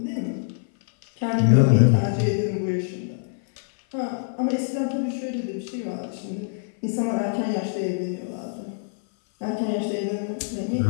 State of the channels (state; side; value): silent; right; 58 dB below the other